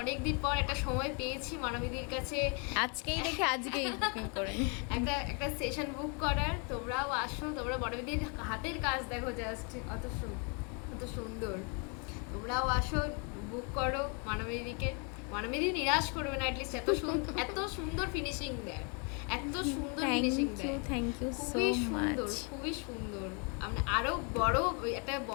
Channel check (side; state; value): right; quieter; 36.1 dB